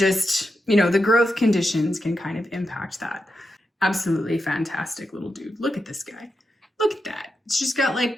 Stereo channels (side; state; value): both; normal; correlation 0.87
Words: the growth conditions can kind of impact that. Absolutely fantastic little dude. Look at this guy. Look at that. It's just got